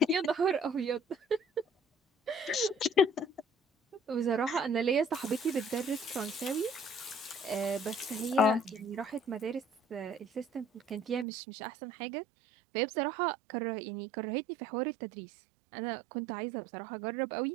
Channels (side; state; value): left; drops out; at 11.2 s